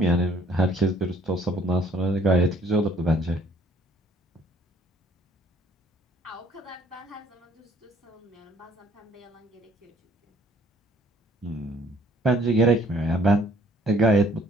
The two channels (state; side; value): normal; both; correlation 0.59